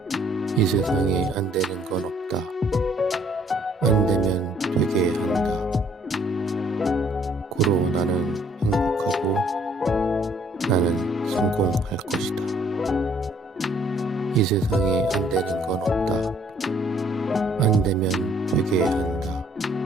이 세상에 안 되는 건 없다. 안 되면 되게 한다. 고로 나는 행복하고 나는 성공할 것이다. 이 세상에 안 되는 건 없다. 안 되면 되게 한다.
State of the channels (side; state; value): both; normal; correlation 0.62